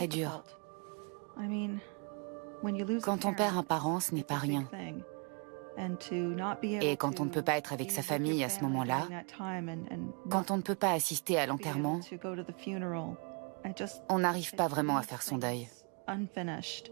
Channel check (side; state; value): left; quieter; 36.1 dB